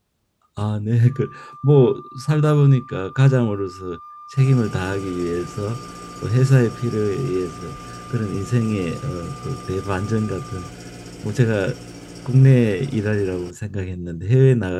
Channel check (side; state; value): both; identical; correlation 1.00